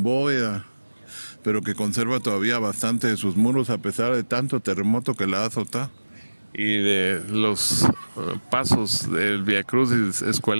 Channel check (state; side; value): inverted; both; correlation -1.00